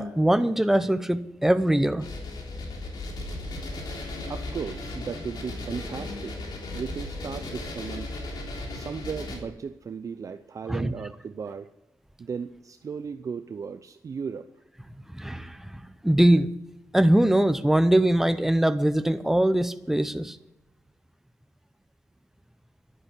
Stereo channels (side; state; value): both; normal; correlation 0.96